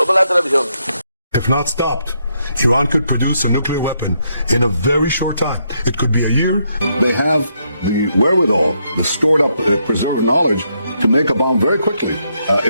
a la televisión. If not stopped, Iran could produce a nuclear weapon in a very short time. It could be a year. They have the wherewithal, the stored up, preserved knowledge to make a bomb very quickly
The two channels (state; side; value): inverted; both; correlation -0.77